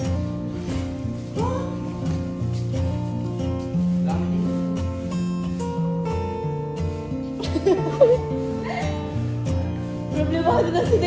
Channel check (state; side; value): identical; both; correlation 1.00